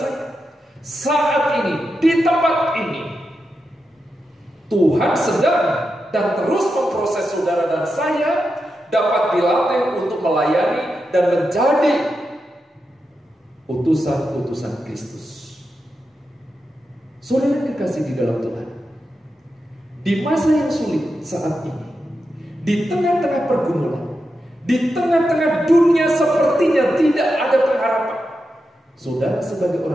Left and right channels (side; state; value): both; normal; correlation 0.88